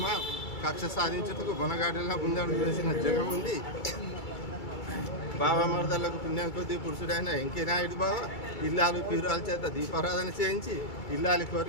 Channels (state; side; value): late; right; 2.3 ms